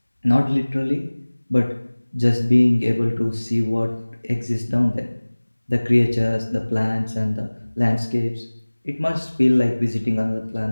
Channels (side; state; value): both; inverted; correlation -1.00